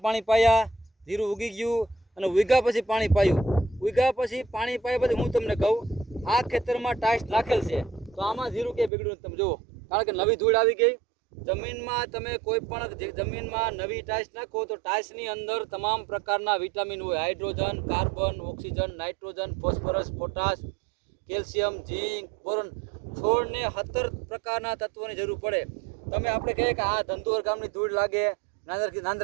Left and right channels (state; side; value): drops out; left; at 8.9 s